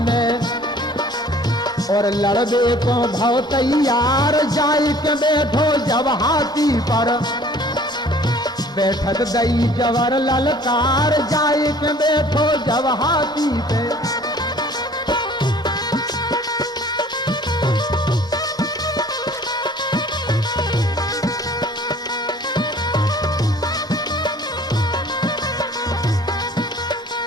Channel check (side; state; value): both; normal; correlation 0.52